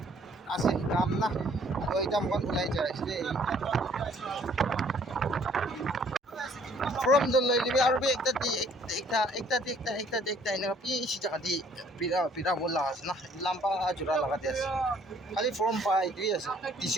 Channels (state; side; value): normal; both; correlation 0.60